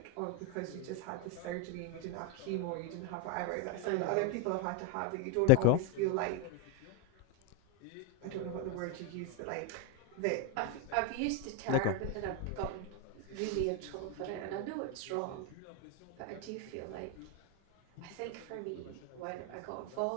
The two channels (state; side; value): different; both; correlation 0.02